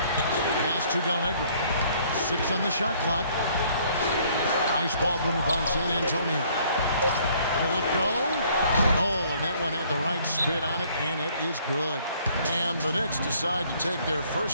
Pass to Del Negro. 6 on the shot clock. Nice ball movement by San Antonio. Will it go? Oh, and that one had the right spin on it, and it is good. And the Knicks decide to take their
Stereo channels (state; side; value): inverted; both; correlation -0.61